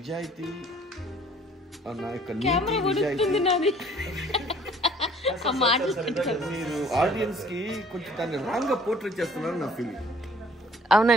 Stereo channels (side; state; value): both; normal; correlation 0.55